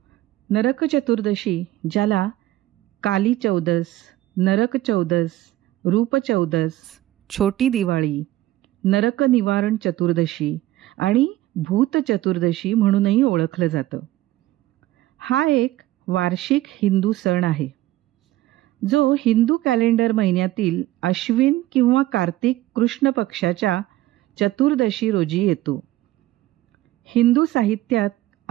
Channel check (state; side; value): quieter; left; 15.8 dB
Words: नरक चतुर्दशी, ज्याला काली चौदस, नरक चौदस, रूप चौदस, छोटी दिवाळी, नरक निवारण चतुर्दशी आणि भूत चतुर्दशी म्हणूनही ओळखलं जातं. हा एक वार्षिक हिंदू सण आहे, जो हिंदू कॅलेंडर महिन्यातील अश्विन किंवा कार्तिक कृष्ण पक्षाच्या चतुर्दशी रोजी येतो. हिंदू साहित्यात